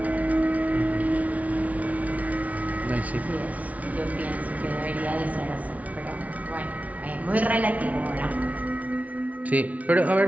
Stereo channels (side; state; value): left; late; 0.069 ms